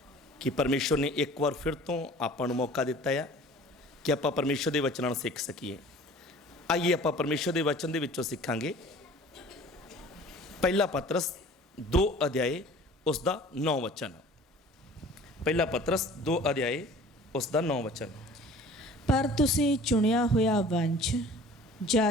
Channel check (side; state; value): both; normal; correlation 0.46